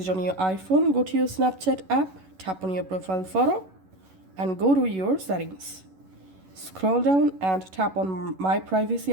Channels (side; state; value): left; late; 11 ms